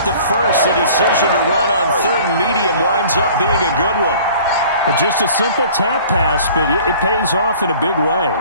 the first. The decision to run on 3rd and medium winds up being a good one. Just a simple tap pass, but it pays off in a big way.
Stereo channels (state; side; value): inverted; both; correlation -0.49